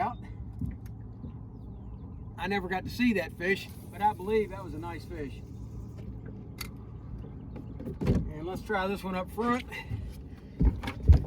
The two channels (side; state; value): both; identical; correlation 1.00